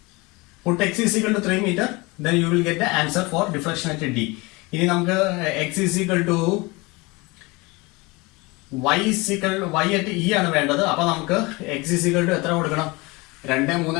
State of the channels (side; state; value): right; quieter; 24.8 dB